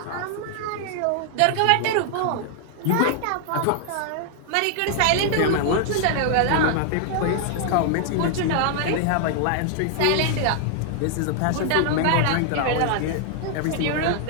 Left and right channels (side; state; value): both; different; correlation 0.00